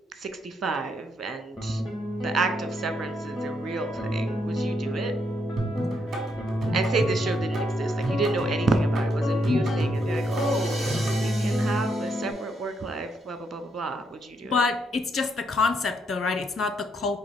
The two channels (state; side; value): normal; both; correlation 0.76